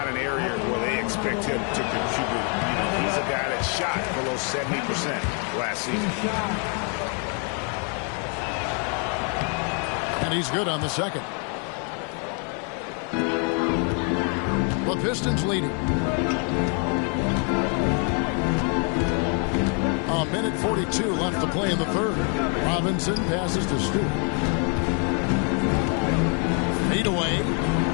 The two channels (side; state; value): right; quieter; 39.3 dB